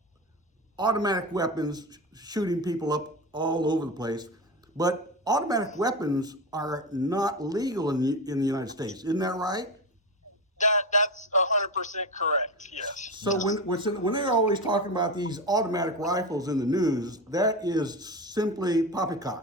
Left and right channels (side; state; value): both; normal; correlation 0.21